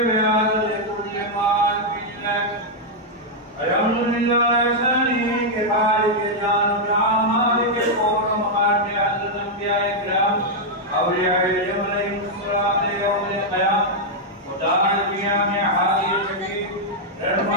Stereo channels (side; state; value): both; normal; correlation -0.02